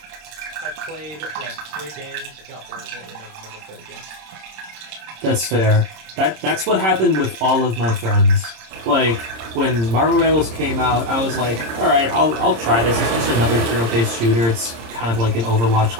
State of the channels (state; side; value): late; left; 26 ms